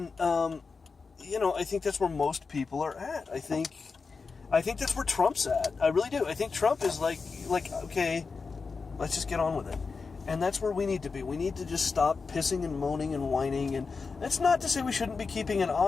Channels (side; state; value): right; quieter; 4.7 dB